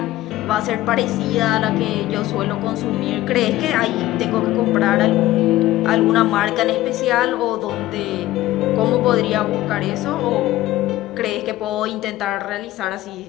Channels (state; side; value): quieter; right; 15.9 dB